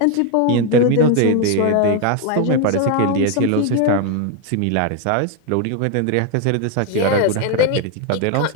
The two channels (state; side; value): different; both; correlation 0.01